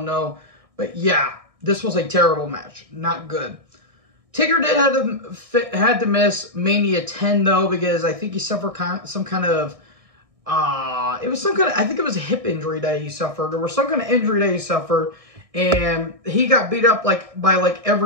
to know. But yeah, this was a terrible match. Not good. Taker did had to miss Mania 10 though, because I think he suffered some kind of I think it was a hip injury that he suffered, or some kind of injury that he suffered, and he got beat up by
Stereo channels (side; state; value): left; late; 1.6 ms